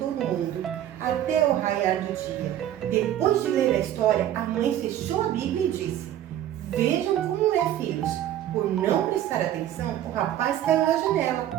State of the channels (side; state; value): left; quieter; 11.8 dB